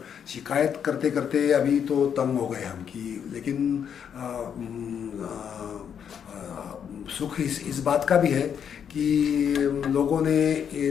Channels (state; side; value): quieter; right; 8.0 dB